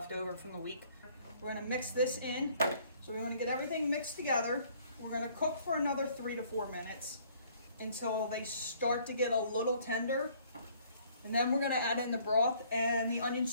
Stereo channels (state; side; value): inverted; both; correlation -0.60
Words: over from the week. We're gonna mix this in. So we wanna get everything mixed together. We're gonna cook for another 3 to 4 minutes until they start to get a little tender. And then we're gonna add in the broth and the onion